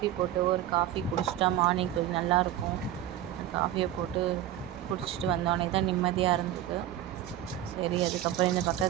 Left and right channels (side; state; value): left; quieter; 12.4 dB